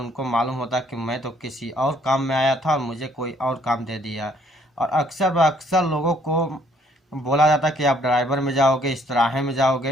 मालूम होता है कि मैं तो किसी और काम में आया था और मुझे कोई और काम दे दिया। और अक्सर व अक्सर लोगों को बोला जाता है कि आप ड्राइवर में जाओगे, इस्त्राहे में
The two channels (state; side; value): normal; both; correlation 0.64